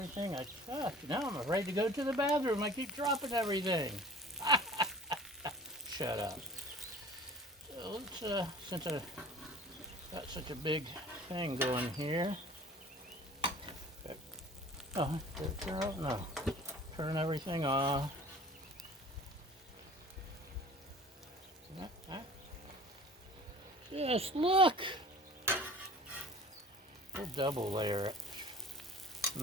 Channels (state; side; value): normal; both; correlation 0.44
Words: I touch. Now I'm afraid to go to the bathroom. I keep dropping everything. Shut up. So let's, since I got such a big thing going here. Oh, no. Turn everything off. Just look. We'll double layer it.